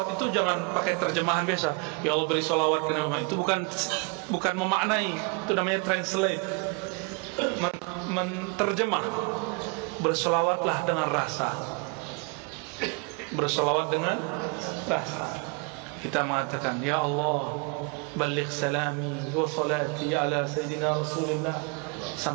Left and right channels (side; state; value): left; quieter; 31.2 dB